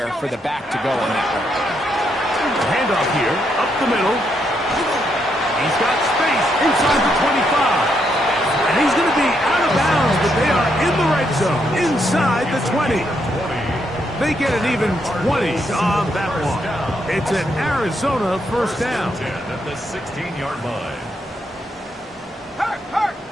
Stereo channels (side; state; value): both; normal; correlation 0.77